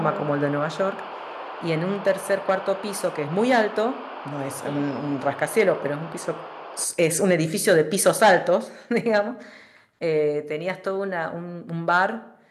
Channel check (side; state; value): both; identical; correlation 1.00